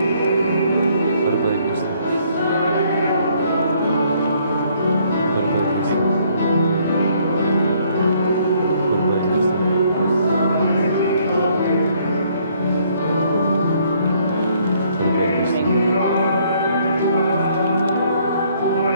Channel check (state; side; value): inverted; both; correlation -0.66